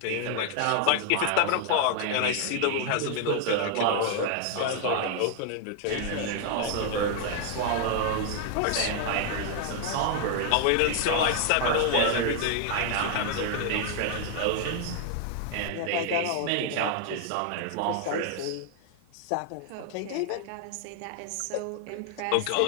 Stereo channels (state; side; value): different; both; correlation 0.00